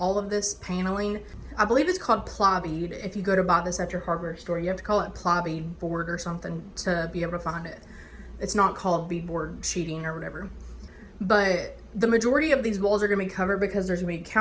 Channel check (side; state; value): both; identical; correlation 1.00